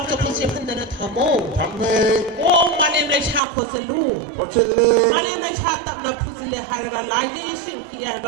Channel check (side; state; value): left; drops out; at 3.4 s